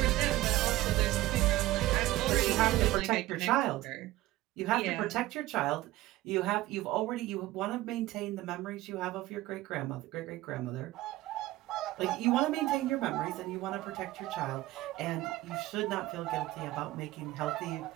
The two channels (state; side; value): quieter; left; 17.0 dB